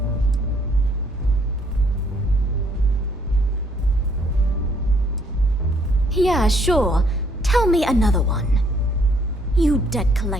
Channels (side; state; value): both; normal; correlation 0.66